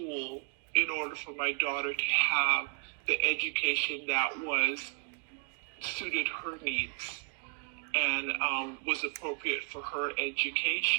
in order for my daughter to have the education that was suited her needs and was appropriate for her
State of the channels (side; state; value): left; quieter; 38.8 dB